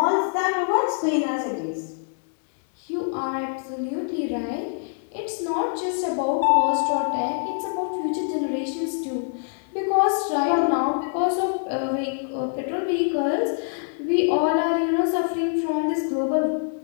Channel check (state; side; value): silent; right; digital silence